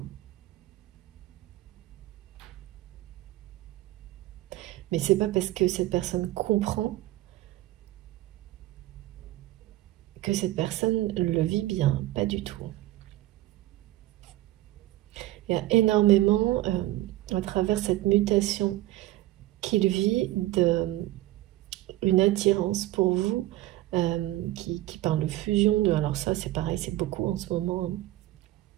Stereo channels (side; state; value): left; quieter; 16.2 dB